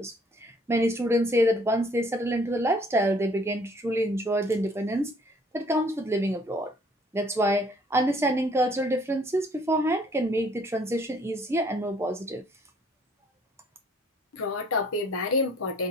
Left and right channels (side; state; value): both; normal; correlation 0.60